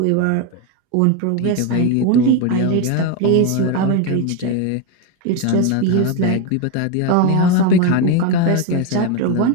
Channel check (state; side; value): different; both; correlation 0.02